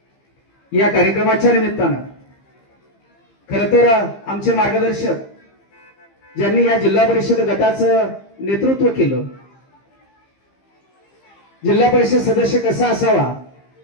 या कार्यक्रमाच्या निमित्तानं खरं तर आमचे मार्गदर्शक ज्यांनी या जिल्हा परिषद गटाचं नेतृत्व केलं, जिल्हा परिषद सदस्य कसा असावा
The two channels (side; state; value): right; late; 15 ms